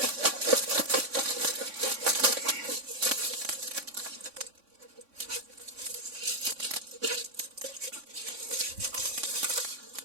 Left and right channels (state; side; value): late; left; 3.6 ms